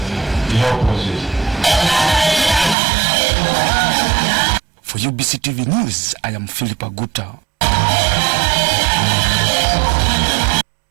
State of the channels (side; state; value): left; drops out; at 2.8 s